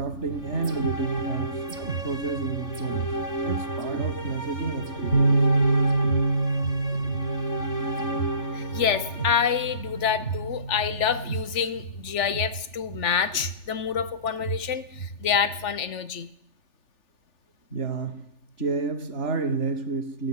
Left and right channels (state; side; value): late; right; 3.4 ms